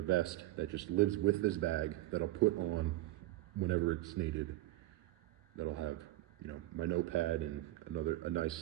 vest that just lives with this bag that I'll put on whenever it's needed. That'll have my notepad and a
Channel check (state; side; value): quieter; left; 16.7 dB